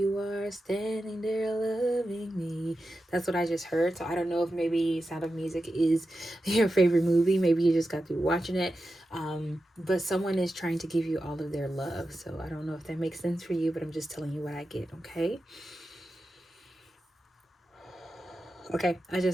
are standing there loving me. That's what I just heard. So I don't know if maybe Sound of Music is your favorite movie. Maybe you just got through watching it. But someone is trying to give you all of their love. So I don't know if that makes sense for you, but I'm just telling you what I get, okay? Okay, I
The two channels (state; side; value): normal; both; correlation 0.91